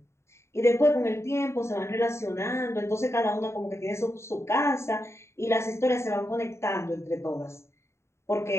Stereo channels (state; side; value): late; right; 0.13 ms